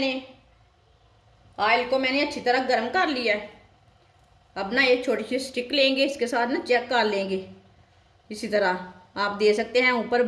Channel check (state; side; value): identical; both; correlation 1.00